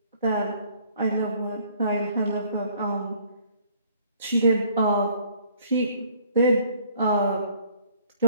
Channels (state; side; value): inverted; both; correlation -0.60